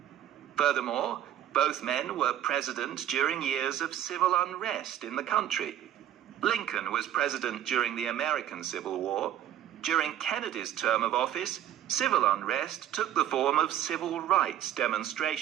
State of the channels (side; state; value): left; quieter; 11.3 dB